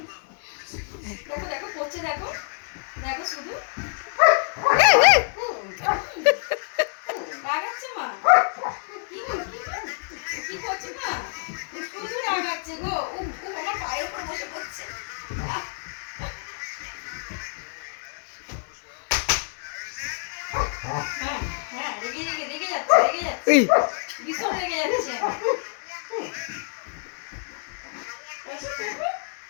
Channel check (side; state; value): right; silent; 60 dB below the other